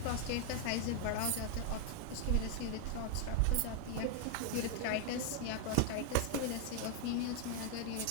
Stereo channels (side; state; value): both; different; correlation 0.00